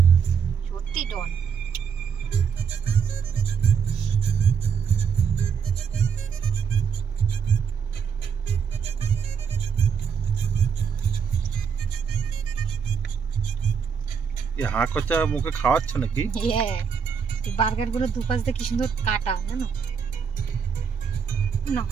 छोटी डॉन। यहाँ कच्चा मुखे खाওয়াচ্ছ নাকি? এই বার্গার গুলো দুপাশ দিয়ে কি সুন্দর কাটা, জানো না?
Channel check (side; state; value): left; quieter; 6.7 dB